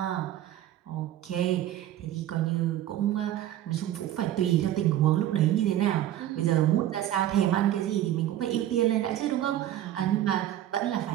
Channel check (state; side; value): quieter; left; 12.5 dB